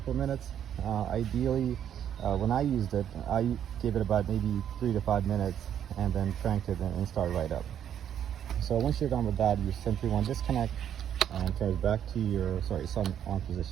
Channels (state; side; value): quieter; left; 9.6 dB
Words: minutes. Ideally, when I used it, I gave it about maybe 3 to 5 minutes and then cranked it and started right up. So once you're done with that, you simply want to disconnect and turn it back to your, sorry, it's on